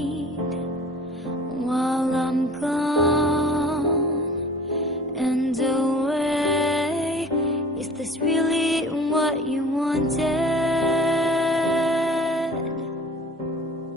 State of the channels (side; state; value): both; normal; correlation 0.45